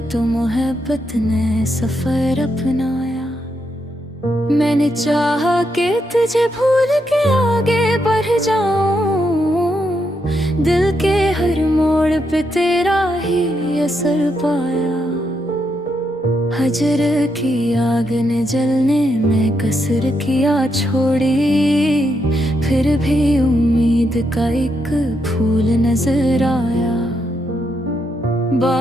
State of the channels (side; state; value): both; normal; correlation 0.80